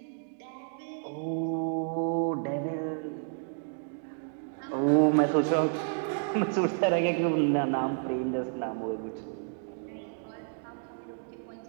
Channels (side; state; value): left; silent; digital silence